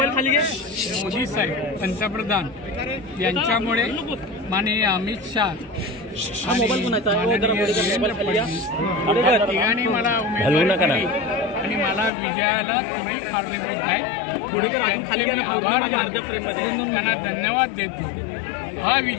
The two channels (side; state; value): right; drops out; at 12.1 s